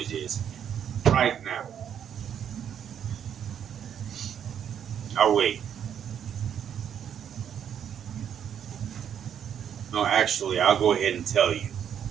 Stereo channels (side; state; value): left; quieter; 8.9 dB